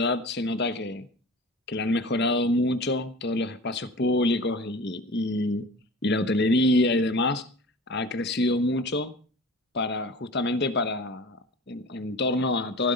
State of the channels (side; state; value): both; normal; correlation 0.38